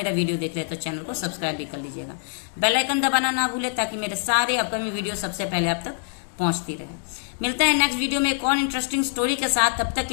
वीडियो देख रहे हैं तो चैनल को सब्सक्राइब भी कर लीजिएगा। बेल आइकन दबाना ना भूले ताकि मेरे सारे अपकमिंग वीडियो सबसे पहले आप तक पहुंचती रहे। मिलते हैं नेक्स्ट वीडियो में एक और इंटरेस्टिंग स्टोरी के साथ। तब तक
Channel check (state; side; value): silent; right; 62 dB below the other